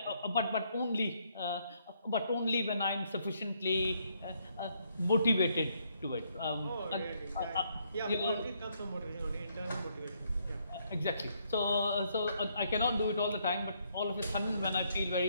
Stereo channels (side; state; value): both; inverted; correlation -0.72